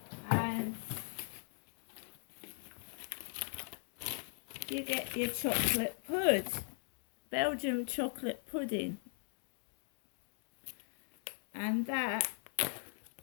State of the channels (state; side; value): silent; right; digital silence